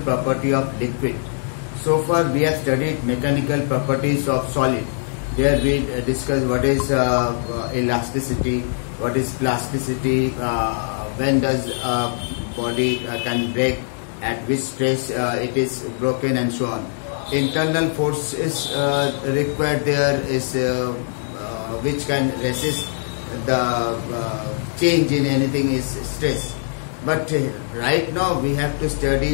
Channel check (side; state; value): right; silent; digital silence